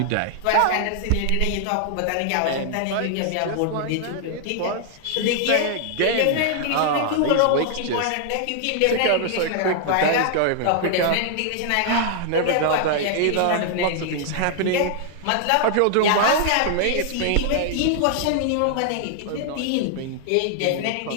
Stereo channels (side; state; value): both; different; correlation -0.01